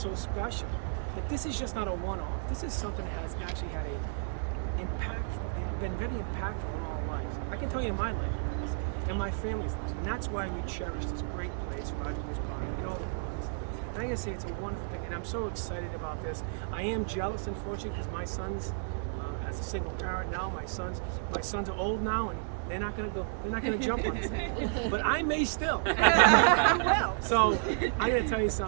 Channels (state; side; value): silent; left; 56 dB below the other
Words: special. That this is just not a one-off. This is something that has actually had been very impactful in all lives. I can tell you in my life, and my family's life, and that's why we cherish this great place, Roger Williams Park, and all the parks. And I gotta say, it's a wonderful thing, and I'm so excited about this. I am jealous, unfortunately, because my sons, as as a single parent now. My sons are old now, and they're not gonna jump on this thing. But I may still. So I'm gonna tell you